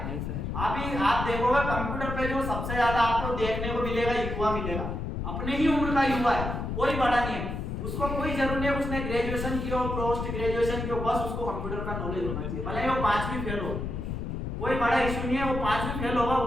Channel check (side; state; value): left; noise; rumble, 4 dB below the sound